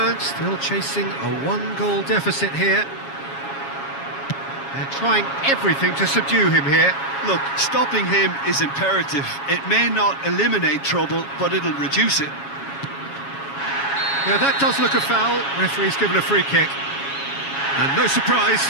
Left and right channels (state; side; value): late; right; 7.2 ms